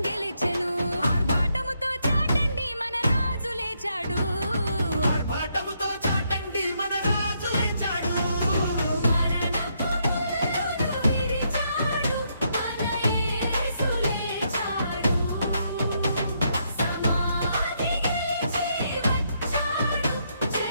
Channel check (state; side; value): inverted; both; correlation -0.76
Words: గెలిచెను ఆర్భాటముతో చాటండి మన రాజు లేచాడు ఆర్భాటముతో చాటండి మన రాజు లేచాడు మరణపు ముళ్ళును విరిచాడు మన యేసు లేచాడు సమాధి గెలిచి వచ్చాడు